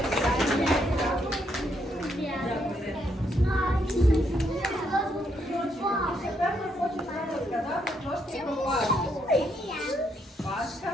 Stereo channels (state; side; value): normal; both; correlation 0.75